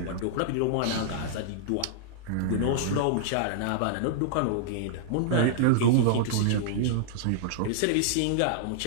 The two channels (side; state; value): both; different; correlation -0.01